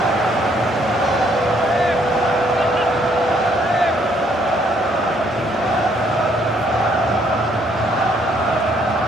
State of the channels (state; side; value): normal; both; correlation 0.67